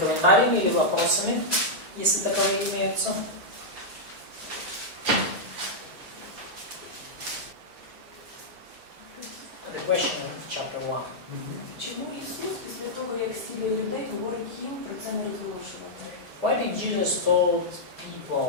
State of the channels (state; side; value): late; left; 5.8 ms